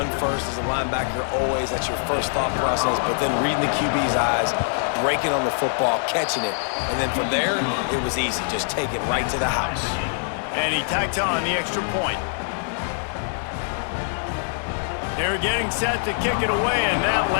first as a linebacker always. That's your first thought process. But then reading the QB's eyes, breaking on the football, catching it. And then from there, it was easy. Just take it right to the house. And he tacked on the extra point. They're getting set to kick it away, and that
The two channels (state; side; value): silent; right; 59 dB below the other